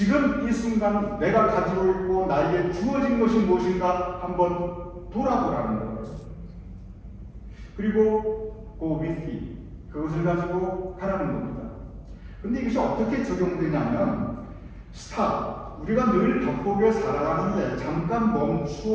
내가 가지고 있고 나에게 주어진 것이 무엇인가 한번 돌아보라는 거예요. 그리고 go with it 그것을 가지고 가라는 겁니다. 근데 이것이 어떻게 적용되냐면 stop 우리가 늘 바쁘게 살아가는데 잠깐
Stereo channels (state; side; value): identical; both; correlation 1.00